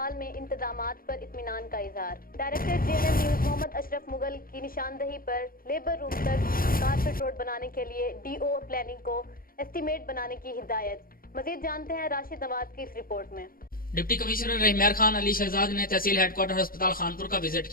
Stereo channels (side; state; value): right; late; 0.42 ms